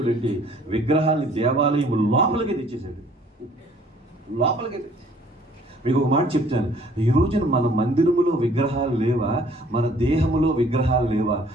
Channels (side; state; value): both; normal; correlation 0.57